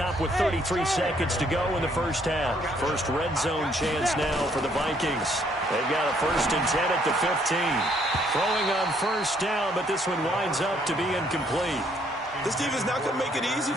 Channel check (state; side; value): normal; both; correlation 0.67